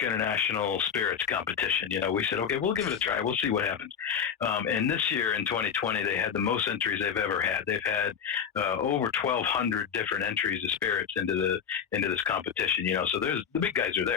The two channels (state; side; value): quieter; right; 7.6 dB